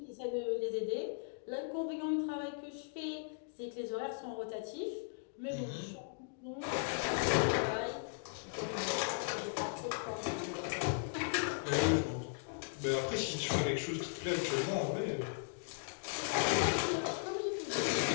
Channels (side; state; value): right; silent; digital silence